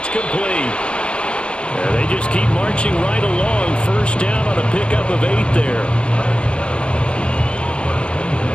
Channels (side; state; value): right; late; 0.051 ms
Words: complete. Yeah, they just keep marching right along. First down on a pickup of 8 there.